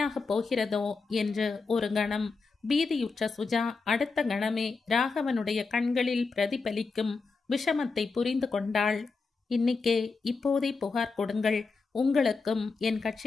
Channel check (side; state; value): right; quieter; 4.4 dB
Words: போகிறதோ என்று ஒரு கணம் பீதியுற்ற சுஜா அடுத்த கணமே ராகவனுடைய கண்களில் பிரதிபலிக்கும் விஷமத்தை புரிந்து கொண்டாள். இன்னிக்கே இப்போதே புகார் கொடுங்கள். உங்களுக்கும் என்